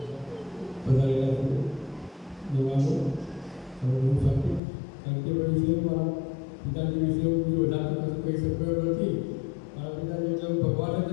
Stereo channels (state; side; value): drops out; right; at 4.6 s